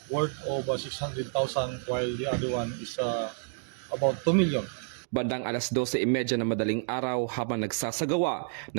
worth of 600,000 while the other one is about 2 million. Bandang alas 12:30 na madaling araw habang nagsasagawa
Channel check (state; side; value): silent; left; digital silence